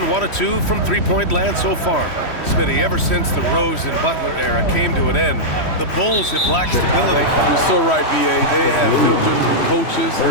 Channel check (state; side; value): late; right; 3.1 ms